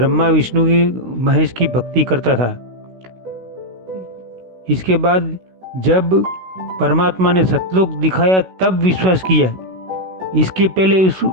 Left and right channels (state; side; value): late; left; 16 ms